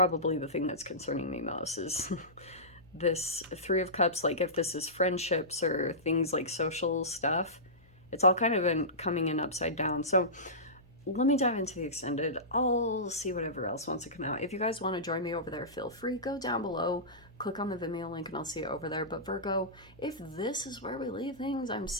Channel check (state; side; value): noise; left; hum, 28 dB below the sound